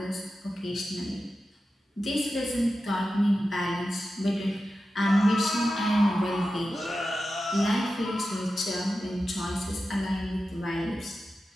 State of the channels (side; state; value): both; normal; correlation 0.92